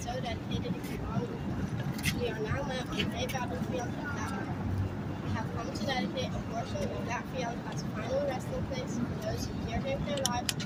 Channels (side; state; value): both; identical; correlation 1.00